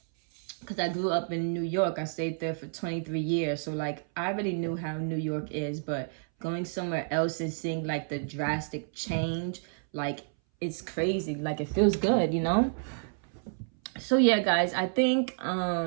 Because I grew up in New York. I stayed there for 23 years. So like, I already knew how New York is, but going somewhere else and seeing like the drastic change, like, it's crazy. Like, it feels good, you know? So yeah, guys, I think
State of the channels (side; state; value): left; silent; 58 dB below the other